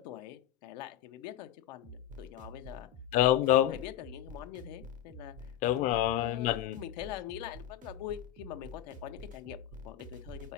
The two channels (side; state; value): right; quieter; 11.9 dB